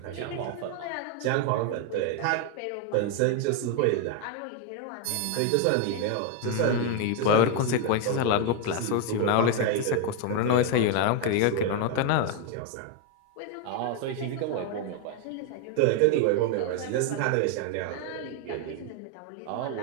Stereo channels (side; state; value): both; different; correlation 0.01